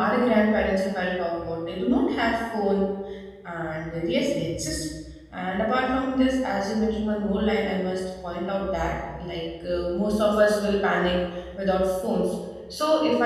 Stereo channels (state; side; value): identical; both; correlation 1.00